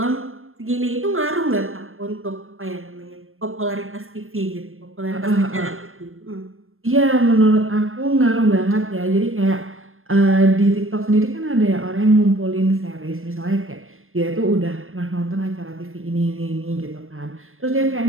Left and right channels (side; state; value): left; late; 0.60 ms